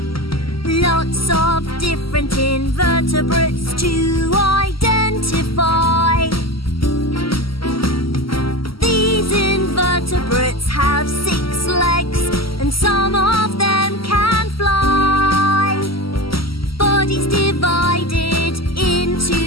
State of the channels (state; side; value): late; right; 0.75 ms